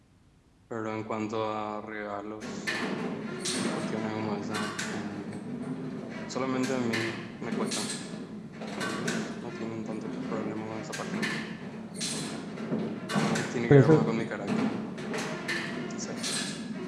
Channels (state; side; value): identical; both; correlation 1.00